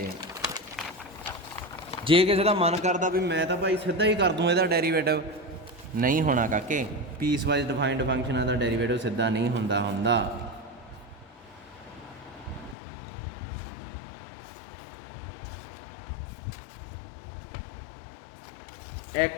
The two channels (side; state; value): right; drops out; at 12.8 s